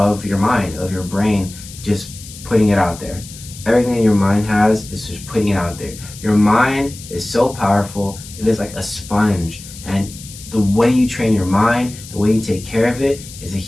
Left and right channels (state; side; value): noise; left; hiss, 16 dB below the sound